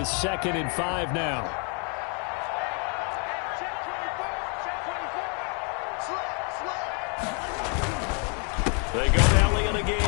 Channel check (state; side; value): quieter; right; 37.9 dB